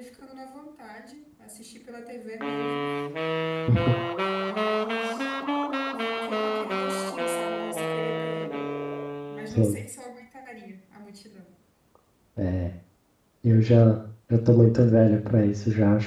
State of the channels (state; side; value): identical; both; correlation 1.00